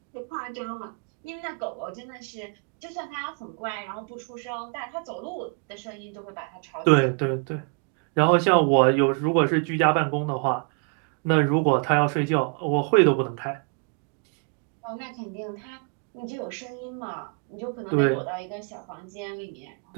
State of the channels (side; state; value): left; quieter; 38.8 dB